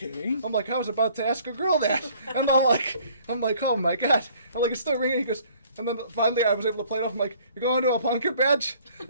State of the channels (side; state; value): both; inverted; correlation -0.57